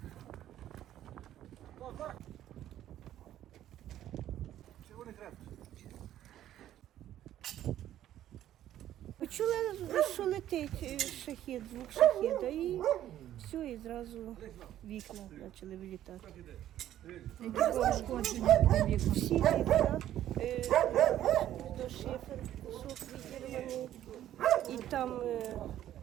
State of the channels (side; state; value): left; quieter; 12.2 dB